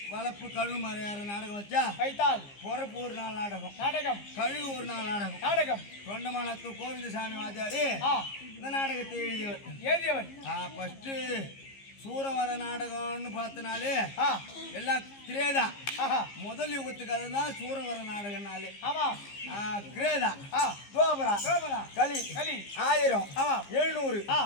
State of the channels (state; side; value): late; right; 15 ms